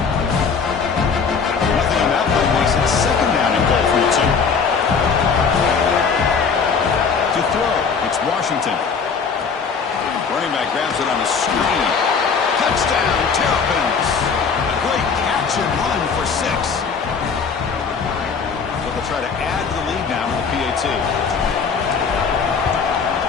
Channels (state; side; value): quieter; right; 5.7 dB